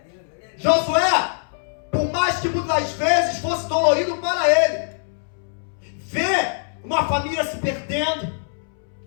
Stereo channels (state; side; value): silent; right; 64 dB below the other